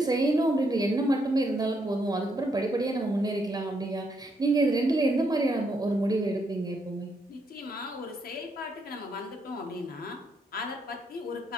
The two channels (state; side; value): normal; both; correlation 0.76